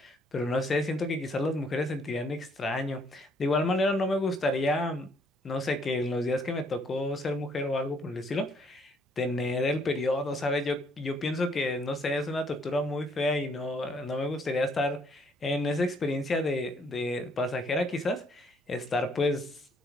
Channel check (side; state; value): both; normal; correlation 0.67